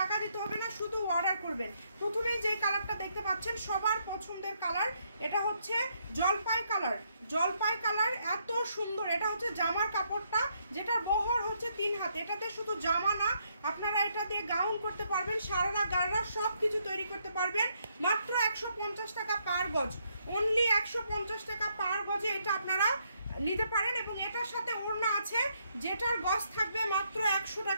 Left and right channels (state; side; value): inverted; both; correlation -0.74